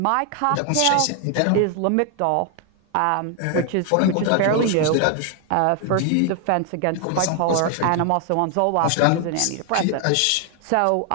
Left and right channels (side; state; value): both; different; correlation 0.00